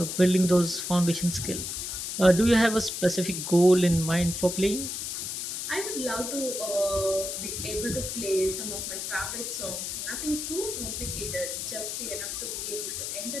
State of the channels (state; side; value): noise; left; hiss, 4 dB below the sound